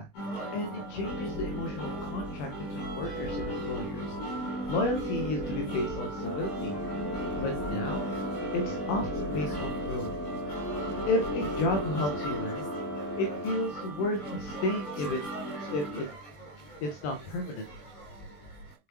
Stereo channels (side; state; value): right; late; 20 ms